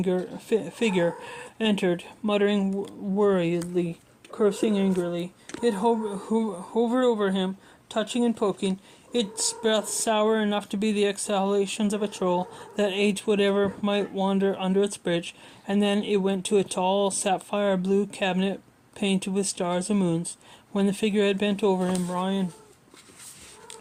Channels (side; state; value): both; identical; correlation 1.00